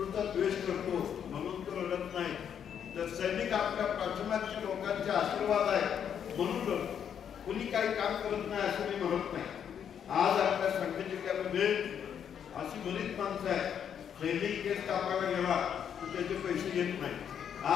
द्वेष करतो म्हणून तो रडत नाही, तर सैनिक आपल्या पाठीमागच्या लोकांचे आशीर्वाद आहे म्हणून कुणी काही काम करत नाही असं मी म्हणत नाही. आज आपल्या सांगली जिल्ह्यामध्ये अशी बरीच माणसं आहेत, सैनिक केस कापायला गेला तर त्याचे पैसे घेत नाही.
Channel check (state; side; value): quieter; right; 8.4 dB